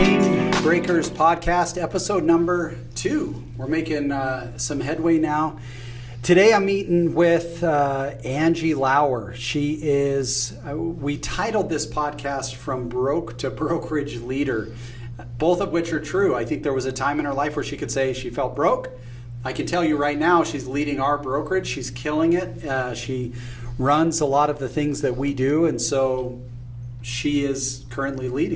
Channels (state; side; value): identical; both; correlation 1.00